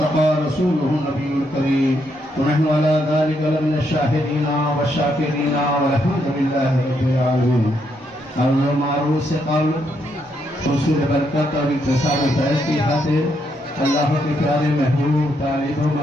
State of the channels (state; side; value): normal; both; correlation 0.77